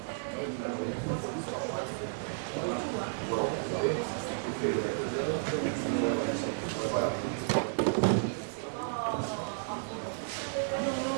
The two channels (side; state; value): left; silent; digital silence